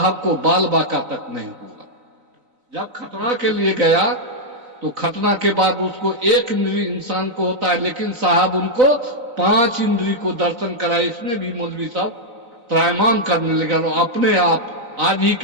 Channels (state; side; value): late; left; 4.0 ms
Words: को बाल बाका तक नहीं हुआ। जब खतना के लिए गया तो खतना के बाद उसको 1 इंद्री इंसान को होता है, लेकिन साहब उनको 5 इंद्री को दर्शन कराए। इसमें भी मौलवी साहब त्रायमान करने लगे और अपने आप आज ही